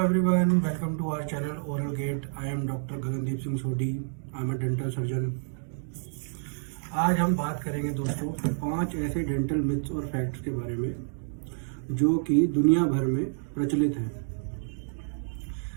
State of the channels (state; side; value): silent; left; digital silence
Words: welcome to our channel Oral Gate. I am Dr. Gagandeep Singh Sodhi. I am a dental surgeon. आज हम बात करेंगे दोस्तों 5 ऐसे डेंटल मिथ्स और फैक्ट्स के बारे में जो कि दुनिया भर में प्रचलित हैं।